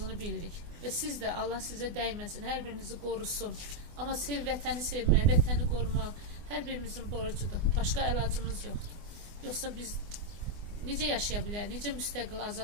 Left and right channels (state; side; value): late; left; 24 ms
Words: bilirik. Və siz də Allah sizə dəyməsin, hər birinizi qorusun. Amma vətəni sevmək, vətəni qorumaq hər birimizin borcudur. Başqa əlacımız yoxdur. Yoxsa biz necə yaşaya bilərik, necə müstəqil,